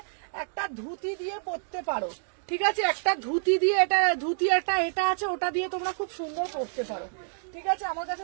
একটা ধুতি দিয়ে পরতে পারো। ঠিক আছে, একটা ধুতি দিয়ে, এটা ধুতি একটা এটা আছে, ওটা দিয়ে তোমরা খুব সুন্দর পরতে পারো। ঠিক আছে, আমার কাছে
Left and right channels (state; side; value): silent; left; digital silence